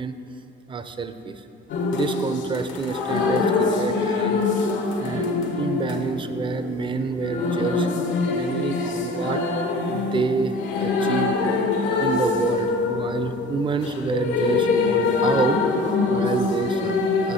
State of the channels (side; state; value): both; normal; correlation 0.42